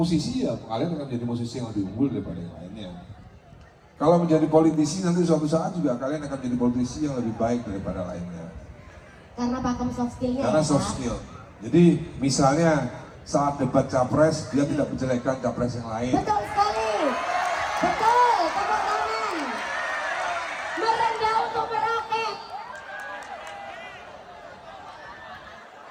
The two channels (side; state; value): both; identical; correlation 1.00